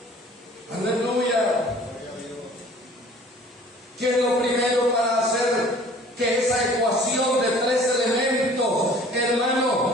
Aleluya. ¿Qué es lo primero para hacer que esa ecuación de 3 elementos,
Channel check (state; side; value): normal; both; correlation 0.50